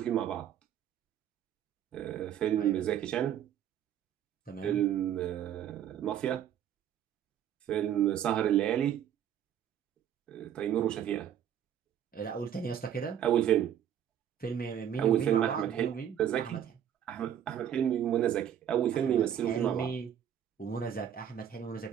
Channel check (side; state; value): left; quieter; 9.8 dB